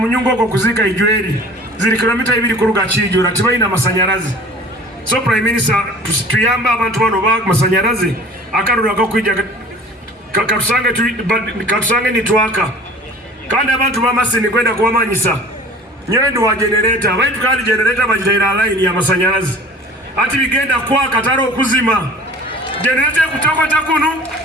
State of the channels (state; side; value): normal; both; correlation 0.45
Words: oko kuzika ijweri zili kilomita 2 kuruga Kijura tibaina amasanyarazi. So Prime Minister tuyamba abantu bano ba masanyarazi akarura gakwija katusange nitwaka kandi abantu ba Masindi kwenda kuwamanyisa nyendu wa generator baitu kandi generator bajitaira line ya masanyarazi ati bigenda kwa kataro okuzima generator kutokota kunu